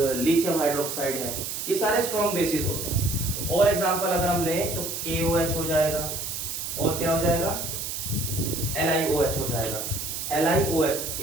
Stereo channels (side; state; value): right; noise; hiss, 5 dB below the sound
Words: लिथियम हाइड्रोक्साइड है, ये सारे स्ट्रॉन्ग बेसिस होते हैं। तो और एग्जांपल अगर हम लें तो KOH हो जाएगा, और क्या हो जाएगा, LiOH हो जाएगा। LiOH,